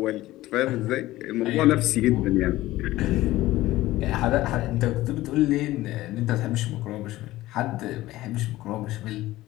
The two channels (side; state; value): right; quieter; 16.7 dB